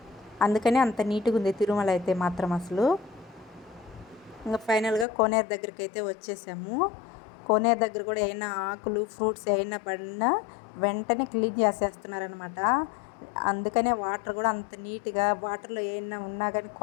అందుకని అంత నీట్గా ఉంది తిరుమల అయితే మాత్రం అసలు. ఇంకా ఫైనల్గా కోనేరు దగ్గరికి అయితే వచ్చేసాము. కోనేరు దగ్గర కూడా ఏమైనా ఆకులు ఫ్రూట్స్ ఏమైనా పడినా వెంటనే క్లీన్ చేసేస్తున్నారనమాట. అందుకనే వాటర్ కూడా అంత నీట్గా, వాటర్లో ఏమైనా ఉన్నా కానీ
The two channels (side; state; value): right; drops out; at 5.1 s